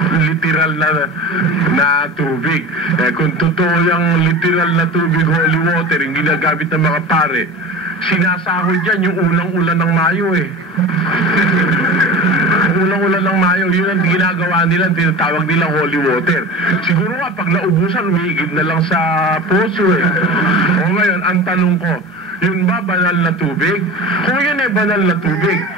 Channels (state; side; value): normal; both; correlation 0.33